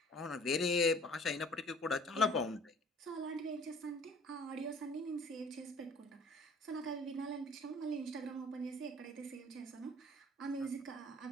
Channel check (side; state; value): both; normal; correlation 0.52